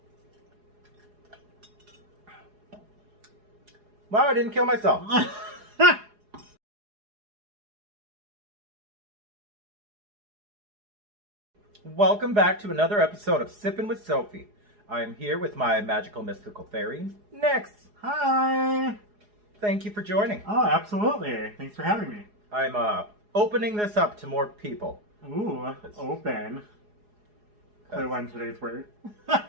Wow, I didn't kill myself. Welcome back to another episode of Sippin' with Sophie. I am here with my magical mystical fairy, Nyxx. Hi! Thank you for joining. Oh, absolutely. Thanks for having me. I'm opening this up to more people. Ooh, open. Clear one today's word.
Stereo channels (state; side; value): late; left; 4.8 ms